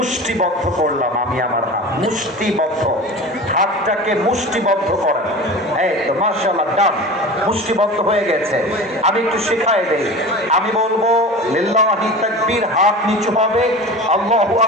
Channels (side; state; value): both; normal; correlation 0.34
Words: করলাম আমি আমার হাত, মুষ্টিবদ্ধ। হাতটাকে মুষ্টিবদ্ধ করেন, এই তো মাশাআল্লাহ, ডান, মুষ্টিবদ্ধ হয়ে গেছে। আমি একটু শেখাই দেই, আমি বলবো লিল্লাহি তাকবীর, হাত নিচু হবে, আল্লাহু